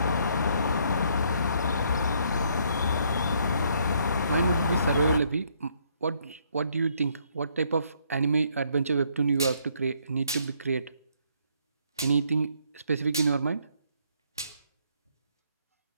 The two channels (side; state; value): both; inverted; correlation -0.69